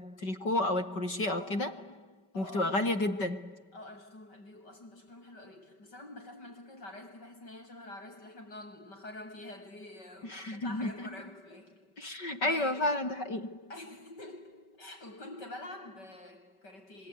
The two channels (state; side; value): late; right; 5.2 ms